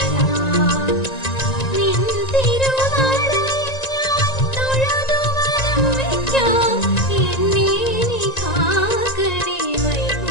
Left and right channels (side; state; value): right; late; 1.9 ms